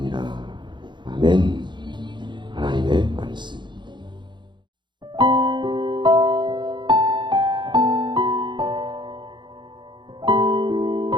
아멘. 하나님의 말씀.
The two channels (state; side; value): late; left; 0.22 ms